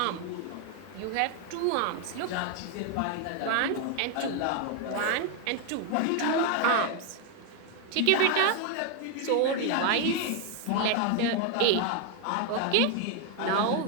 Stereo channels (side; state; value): both; different; correlation 0.01